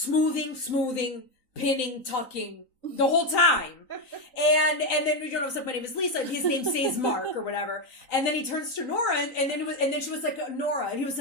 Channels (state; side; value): late; right; 3.9 ms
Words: pinning, tucking the whole time. And then we don't know, my name is Lisa, and his name says Mark or whatever. And then he turns to Nora, and then she was like, Nora. And he was